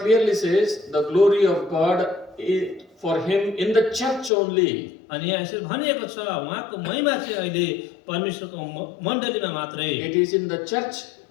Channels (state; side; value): drops out; right; at 4.3 s